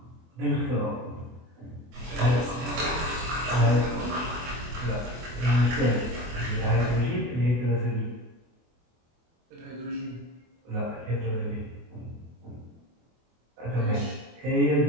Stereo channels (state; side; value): late; left; 24 ms